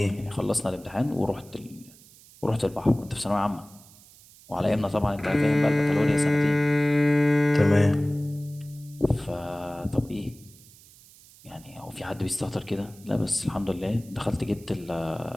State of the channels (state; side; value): noise; right; hiss, 24 dB below the sound